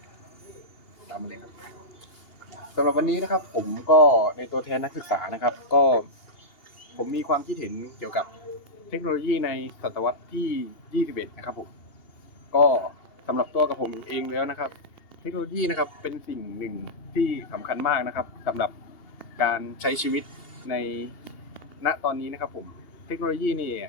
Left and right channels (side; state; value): right; late; 2.8 ms